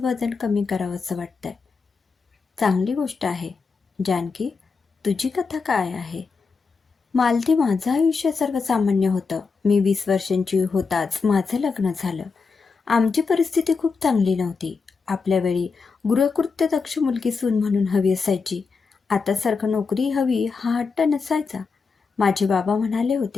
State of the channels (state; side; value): quieter; right; 4.9 dB